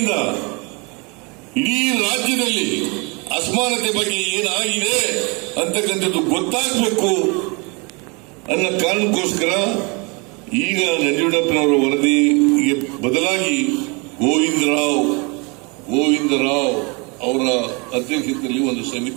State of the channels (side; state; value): left; quieter; 30.3 dB